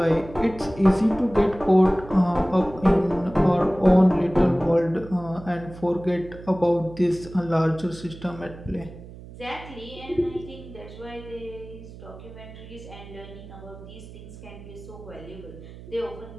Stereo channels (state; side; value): noise; right; hum, 16 dB below the sound